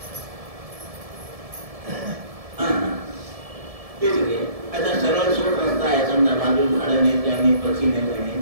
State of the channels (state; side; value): late; left; 1.7 ms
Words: आता सरळ सोड रस्ता आहे समजा बाजून झाडं नाही काही पक्षी